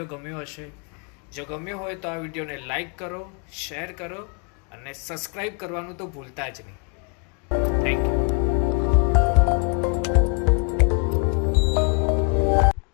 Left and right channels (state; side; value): quieter; right; 36.1 dB